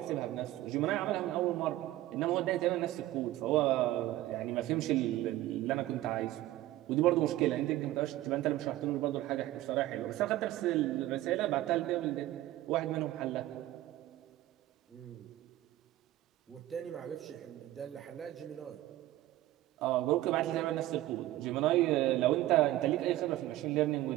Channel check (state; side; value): quieter; left; 15.4 dB